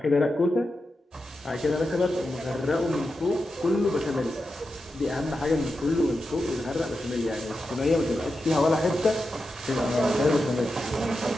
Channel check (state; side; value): normal; both; correlation 0.89